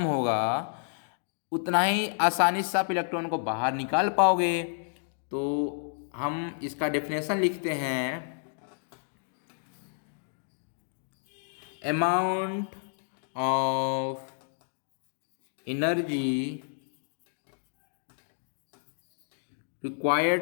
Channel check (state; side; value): silent; right; digital silence